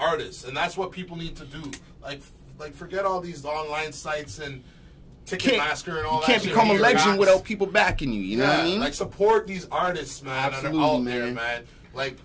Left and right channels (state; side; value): identical; both; correlation 1.00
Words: and that's what people need to do. Like forget all these online sites and Ticketmaster and all that. You can't become a legend without people backing you. You know what I mean? Like, support these artists, man. Absolutely, that are out there, man. Like,